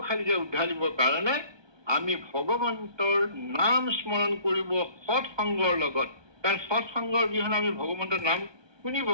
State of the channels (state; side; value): late; left; 1.2 ms